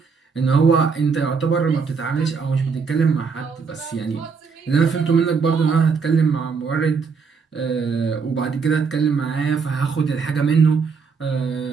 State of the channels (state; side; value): quieter; left; 5.4 dB